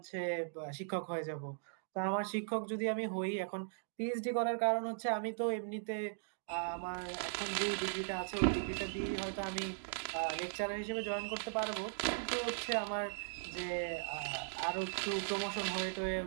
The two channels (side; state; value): left; silent; digital silence